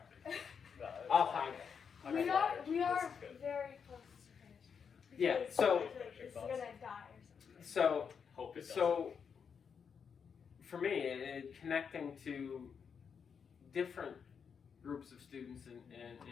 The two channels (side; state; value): right; quieter; 6.6 dB